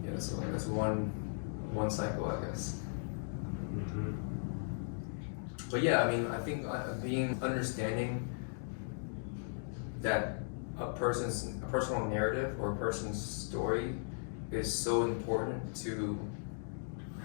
one cycle, I guess. Mm-hmm. But yeah, I mean, I think understanding that a personal narrative or a person's story is so important to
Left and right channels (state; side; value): silent; right; digital silence